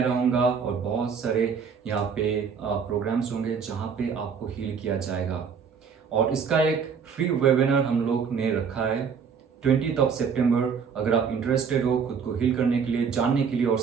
रहूँगा और बहुत सारे यहाँ पे प्रोग्राम्स होंगे जहाँ पे आपको हील किया जाएगा। और इसका एक फ्री वेबिनार हम लोग ने रखा है 20 सितंबर। अगर आप इंटरेस्टेड हो खुद को हील करने के लिए, जानने के लिए और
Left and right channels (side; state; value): left; quieter; 6.4 dB